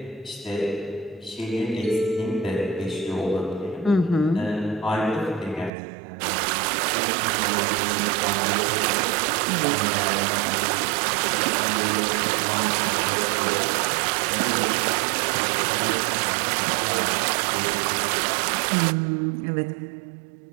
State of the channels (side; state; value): left; drops out; at 5.7 s